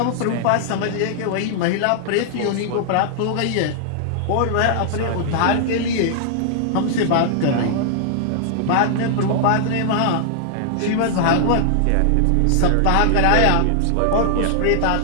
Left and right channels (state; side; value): different; both; correlation -0.01